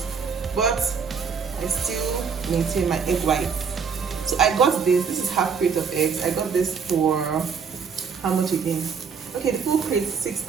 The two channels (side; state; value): left; quieter; 6.1 dB